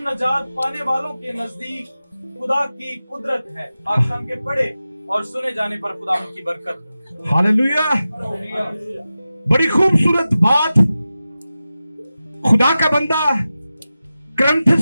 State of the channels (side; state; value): both; inverted; correlation -0.94